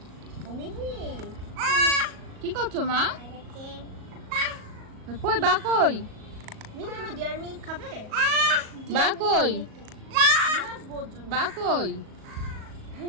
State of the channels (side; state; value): left; late; 37 ms